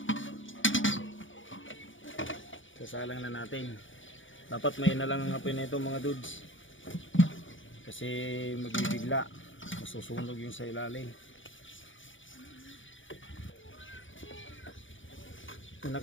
Sasalang na natin. Dapat may na lang ang apoy nito mga dudes. Kasi magbibigla. Masusunog yung sa ilalim.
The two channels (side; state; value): right; late; 0.56 ms